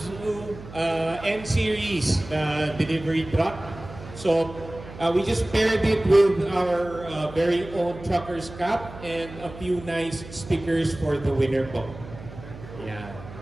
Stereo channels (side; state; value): right; noise; hum, 15 dB below the sound